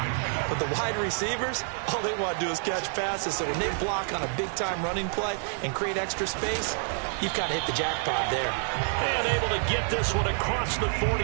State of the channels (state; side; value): silent; left; 59 dB below the other